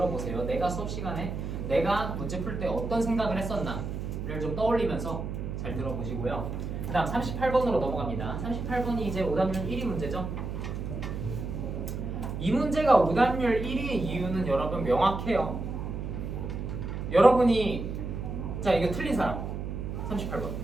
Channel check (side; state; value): right; noise; hum, 5 dB below the sound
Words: 내가 수업 시간에 내가 문제 풀 때 어떤 생각을 했었나를 좀 떠올리면서 잘 들어보시고요. 그 다음 38번으로 넘어갑니다. 38번이 이제 오답률 1위 문제죠. 이 문제가 오답률 1위의 이유는 여러분 명확해요. 여러분이 자 이거 틀린 사람 38번